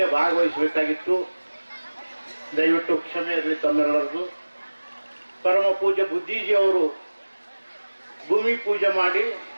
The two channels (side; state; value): both; inverted; correlation -1.00